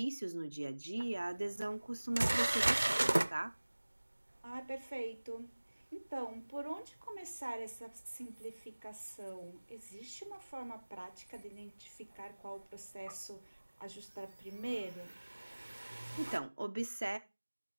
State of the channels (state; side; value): inverted; both; correlation -1.00